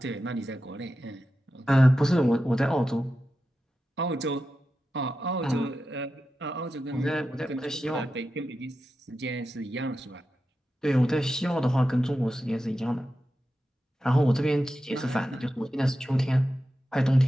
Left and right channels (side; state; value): both; normal; correlation 0.91